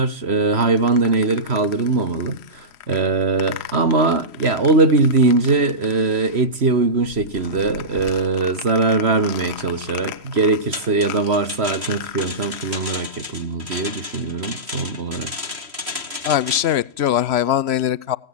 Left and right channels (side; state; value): left; late; 3.0 ms